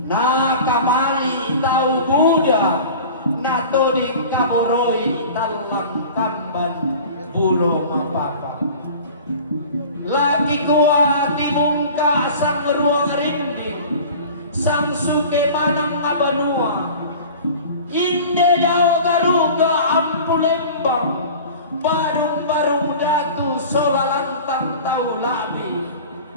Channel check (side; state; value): both; inverted; correlation -0.40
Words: nakamali tau Buddha natoding kaboroi talang kamban bulo mapapa laki kuat timungka sang ruang rinding sang suke manang abanua inde dao garuga ampulembang barung-barung datu solalantang tau ladi